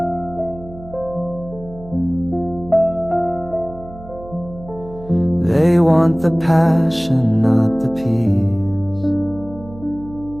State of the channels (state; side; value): noise; right; hum, 17 dB below the sound